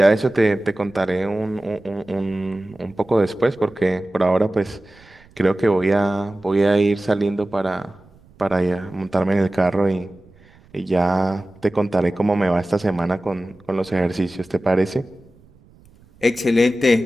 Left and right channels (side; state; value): right; noise; rumble, 27 dB below the sound